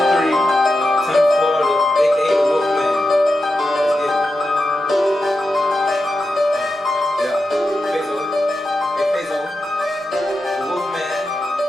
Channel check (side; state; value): both; normal; correlation 0.89